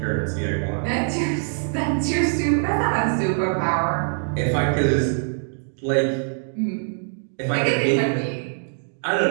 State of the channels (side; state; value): left; silent; 61 dB below the other